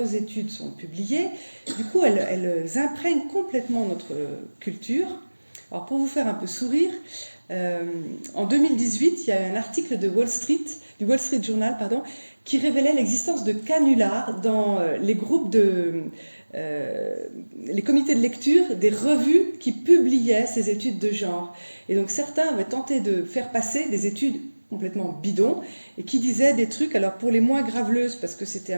études sont publiées. Du coup, elles imprègnent complètement notre culture. Alors, pour vous faire un peu sourire, en 2018, il y a eu un article du Wall Street Journal, qui révélait l'existence de canulars dans les groupes les comités de lecture des revues qui publiaient ces études de genre. Et donc certains avaient tenté de faire passer des études complètement bidons et qui disaient des trucs, alors pour les moins graveleuses, parce que c'était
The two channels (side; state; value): both; inverted; correlation -1.00